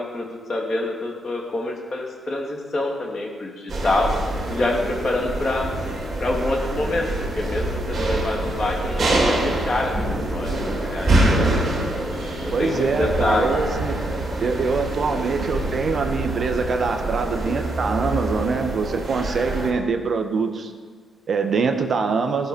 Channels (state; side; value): normal; both; correlation 0.79